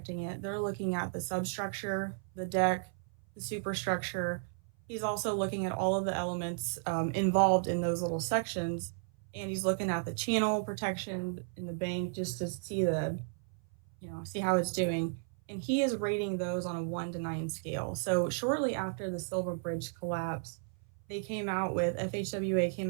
it, they're looking at the substructure, the deck, the superstructure. He's also looking at all of the elements involved in those little sections, and he's looking at the channel protection in the bank just to see see how it's doing. And he is rating those on a 1 to 9 scale. So shortly after the Silver Bridge collapse, FHWA came out with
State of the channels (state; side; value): silent; left; 55 dB below the other